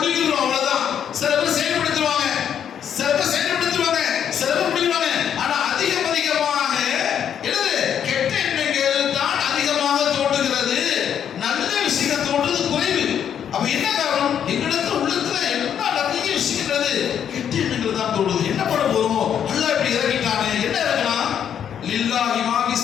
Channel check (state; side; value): quieter; right; 8.8 dB